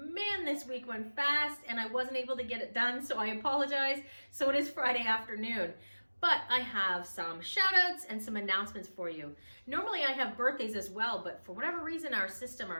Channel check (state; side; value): inverted; both; correlation -1.00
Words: this week went fast and I wasn't able to get it done, so I apologize. So it is Friday afternoon. But I have some shout outs and some announcements for you. Normally I have birthdays as well, but for whatever reason our